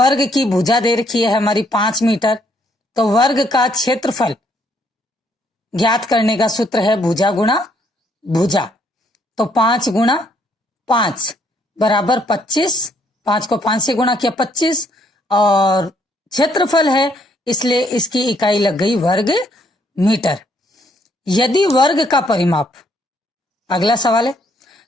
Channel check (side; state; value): both; normal; correlation 0.69